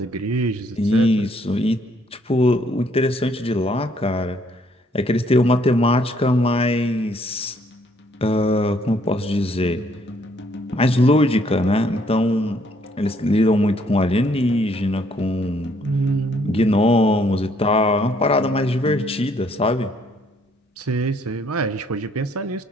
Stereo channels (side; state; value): both; normal; correlation 0.66